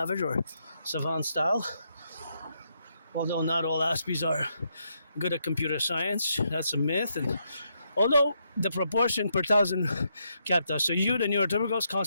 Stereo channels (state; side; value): inverted; both; correlation -0.78